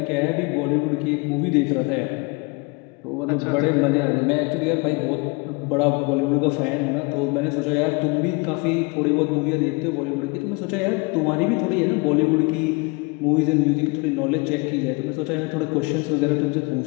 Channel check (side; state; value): right; quieter; 29.1 dB